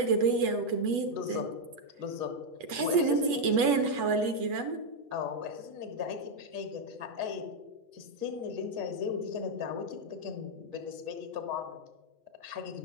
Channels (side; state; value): left; late; 8.1 ms